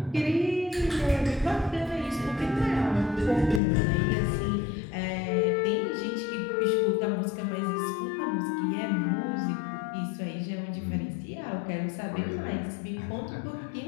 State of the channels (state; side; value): drops out; right; at 3.6 s